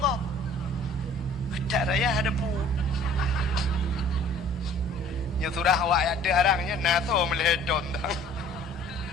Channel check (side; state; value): both; normal; correlation 0.52